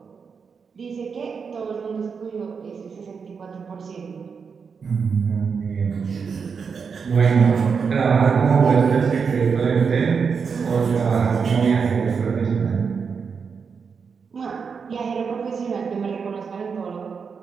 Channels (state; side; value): quieter; left; 5.8 dB